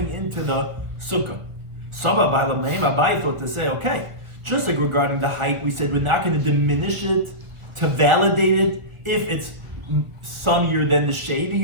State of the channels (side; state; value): left; late; 1.5 ms